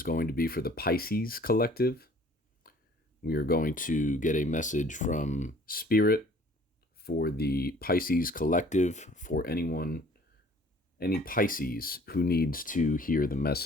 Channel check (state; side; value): normal; both; correlation 0.54